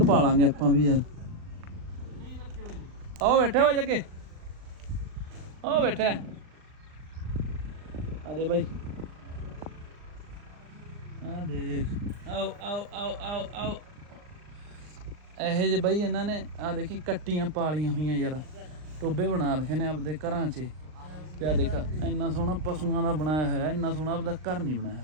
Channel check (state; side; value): late; left; 39 ms